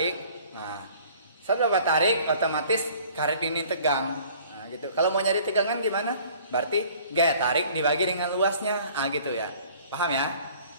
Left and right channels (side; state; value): both; inverted; correlation -0.52